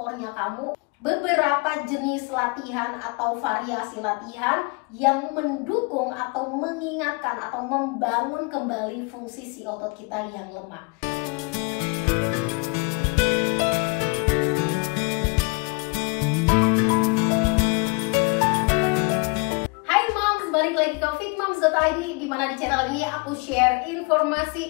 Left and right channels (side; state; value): right; quieter; 30.4 dB